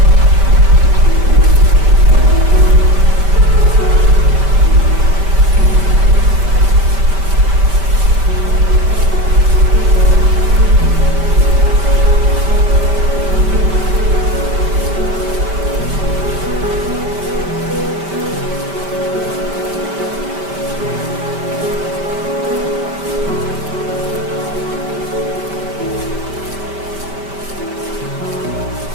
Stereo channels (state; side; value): late; left; 5.1 ms